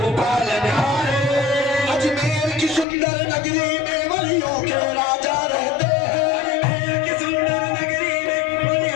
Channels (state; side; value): drops out; right; at 2.9 s